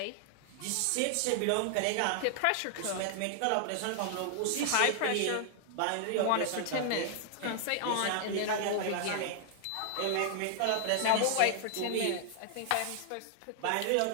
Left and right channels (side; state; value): both; different; correlation 0.00